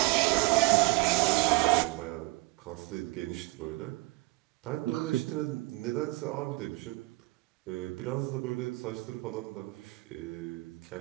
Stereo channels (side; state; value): left; quieter; 22.5 dB